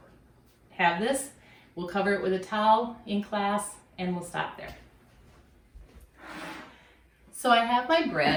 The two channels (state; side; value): identical; both; correlation 1.00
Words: have this, we'll cover it with a towel in class, and we'll stop there. So I have my